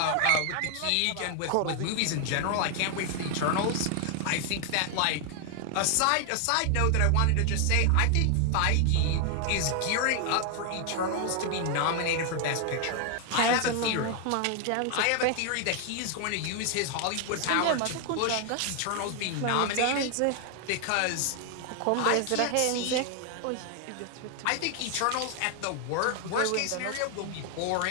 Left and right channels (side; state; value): both; different; correlation 0.00